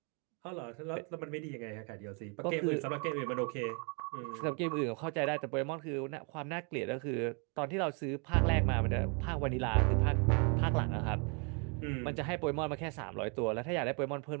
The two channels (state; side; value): quieter; left; 36.2 dB